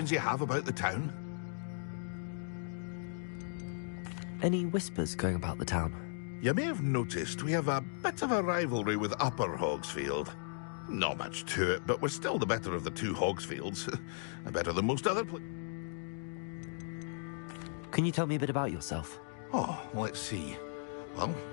you have about the town. Any whispers going about the town? You may have noticed we have a bit of a rivalry with Upper Hogsfield. Not much to it, but we're still the better of the two Hogsfields. Better than most other Can you tell me a bit about yourself? Oh, let's see. Well,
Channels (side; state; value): right; silent; digital silence